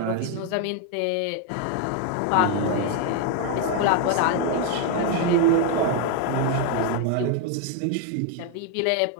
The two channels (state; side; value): different; both; correlation 0.01